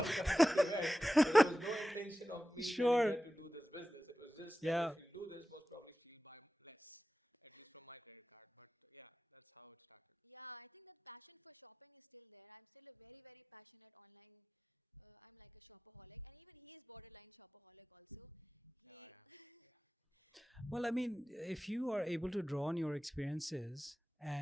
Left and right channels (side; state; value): both; normal; correlation 0.95